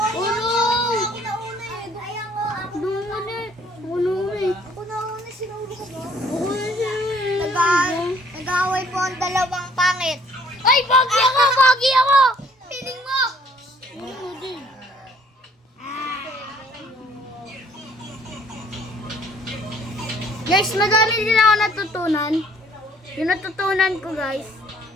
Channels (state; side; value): normal; both; correlation 0.59